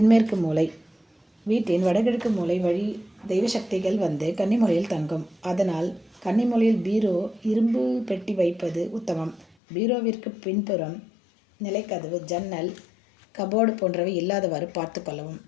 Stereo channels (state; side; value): drops out; right; at 9.5 s